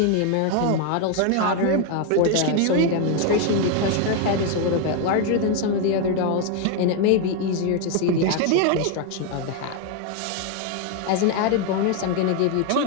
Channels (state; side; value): different; both; correlation 0.01